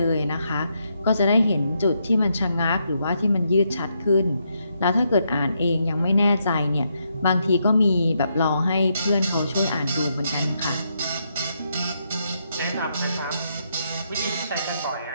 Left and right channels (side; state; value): both; inverted; correlation -0.79